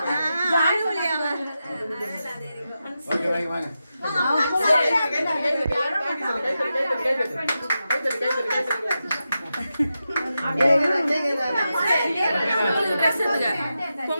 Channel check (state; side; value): inverted; both; correlation -0.90